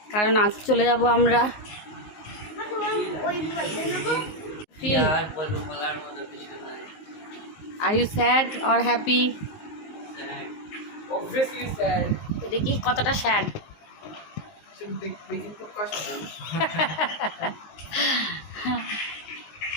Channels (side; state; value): right; late; 19 ms